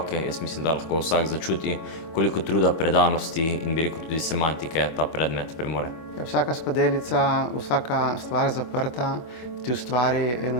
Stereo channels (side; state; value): right; late; 25 ms